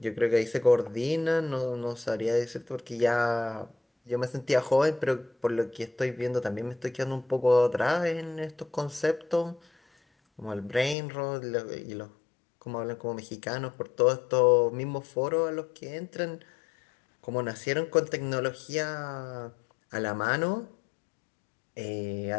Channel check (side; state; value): right; drops out; at 11.0 s